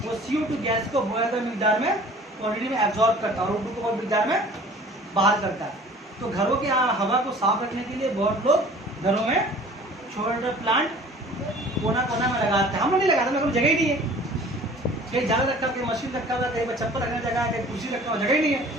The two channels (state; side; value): normal; both; correlation 0.48